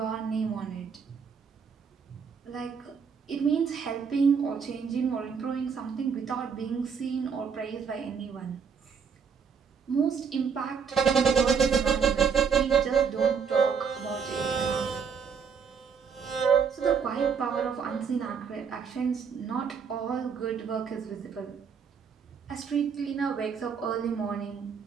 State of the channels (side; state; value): left; quieter; 6.3 dB